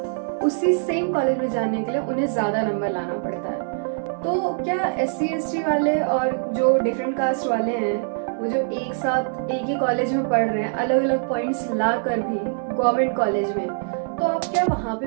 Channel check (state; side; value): silent; left; 63 dB below the other